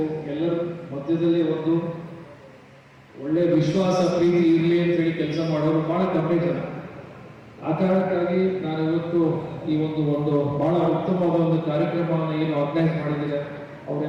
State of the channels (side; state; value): both; identical; correlation 1.00